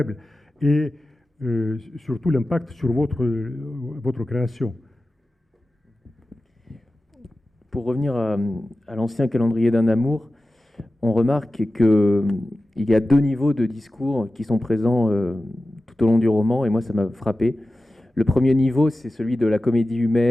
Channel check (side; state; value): both; normal; correlation 0.95